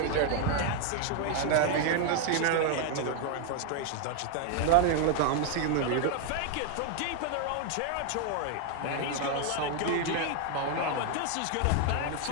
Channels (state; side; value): different; both; correlation 0.00